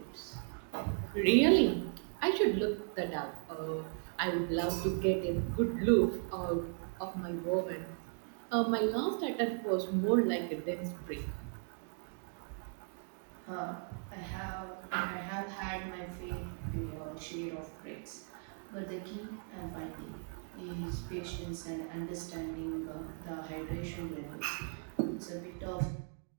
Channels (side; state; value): left; silent; 53 dB below the other